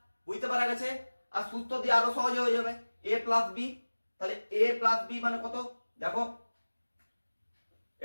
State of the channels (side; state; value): both; inverted; correlation -1.00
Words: বুঝতে পারা গেছে? আর সূত্র দিয়ে আরো সহজে হয়ে যাবে, a প্লাস বি। তাহলে a প্লাস বি মানে কত? দেখো